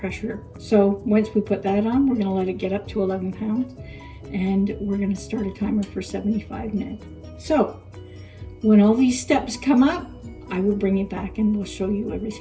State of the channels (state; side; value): identical; both; correlation 1.00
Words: So once we put that on, we're gonna let it get up to 11 pounds, and we're gonna start a timer for 75 minutes. So when all these steps come up, I will bring you back and we'll show you